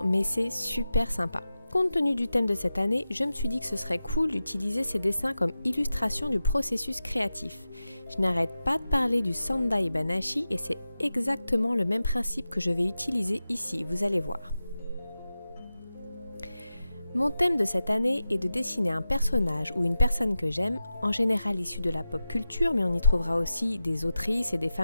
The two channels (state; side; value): inverted; both; correlation -0.93